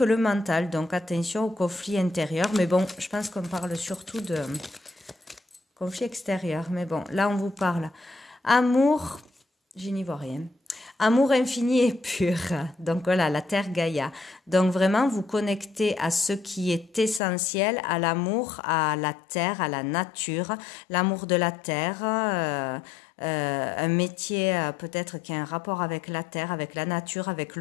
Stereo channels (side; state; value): right; drops out; at 17.2 s